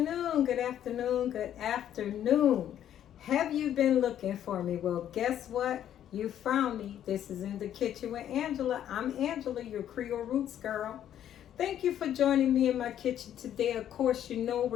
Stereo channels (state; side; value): quieter; right; 10.7 dB